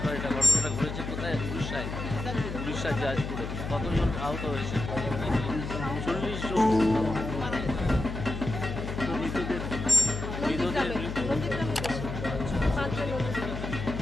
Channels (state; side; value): noise; left; hum, 6 dB below the sound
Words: এটা ঘটনাটা ঘটেছে কোথায়? উড়িষ্যার জাজপুরে। কতজন আহত হয়েছে? 40 জন। তো মৃতদের